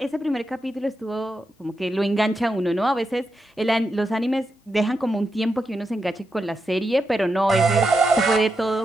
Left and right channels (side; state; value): both; normal; correlation 0.86